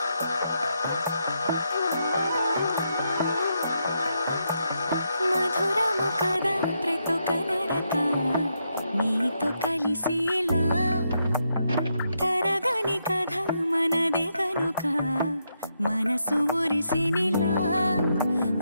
మధురము కదా ప్రతి ఒక్క నడక నీతో కలిసేలా తరగని కథ మనదే కనుక మనసు మురిసినిలా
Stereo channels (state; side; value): inverted; both; correlation -0.81